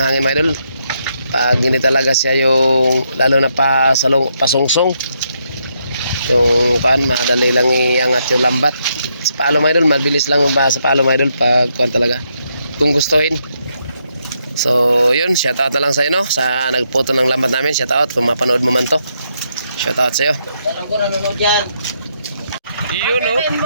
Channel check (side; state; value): both; inverted; correlation -0.78